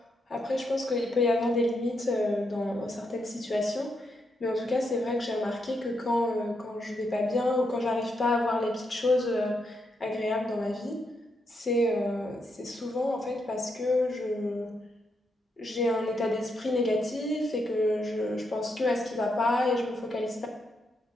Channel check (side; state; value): both; normal; correlation 0.81